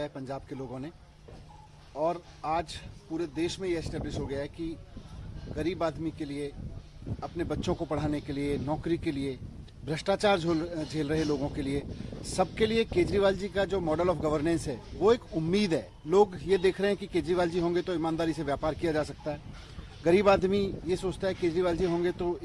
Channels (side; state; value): both; identical; correlation 1.00